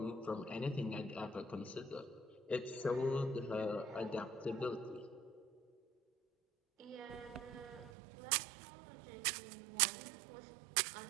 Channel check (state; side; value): drops out; left; at 7.9 s